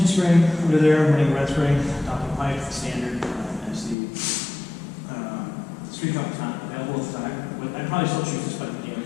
spring under there, running red spring, Doppler pipe, standard, as the Street Cup is not available at the time. But I'd probably still choose this bike anyway,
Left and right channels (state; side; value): drops out; right; at 4.0 s